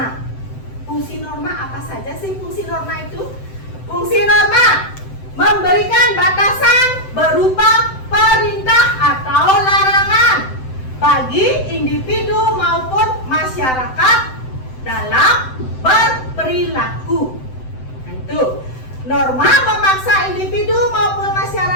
Fungsi norma apa saja sih fungsi norma itu? Fungsi norma memberikan batasan berupa perintah atau larangan bagi individu maupun masyarakat dalam berperilaku. Nah, itu. Norma memaksa individu maupun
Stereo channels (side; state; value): right; late; 7.8 ms